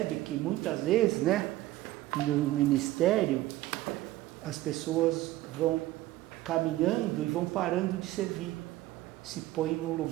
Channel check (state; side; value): quieter; left; 16.4 dB